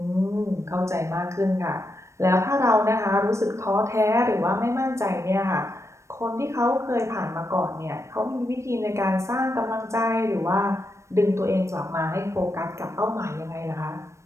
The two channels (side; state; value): left; late; 0.14 ms